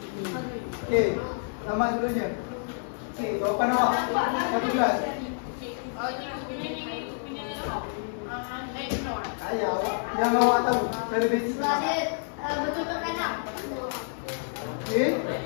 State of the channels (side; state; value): right; silent; 58 dB below the other